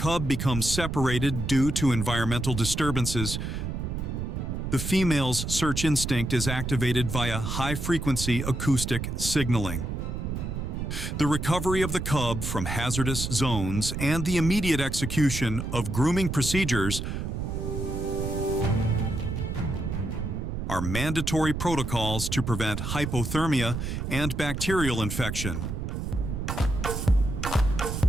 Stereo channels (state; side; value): noise; right; rumble, 4 dB below the sound